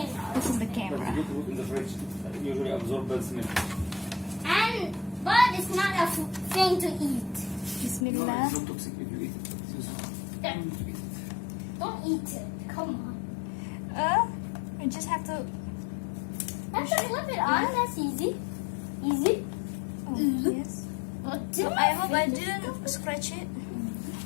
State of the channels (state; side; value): drops out; right; at 8.1 s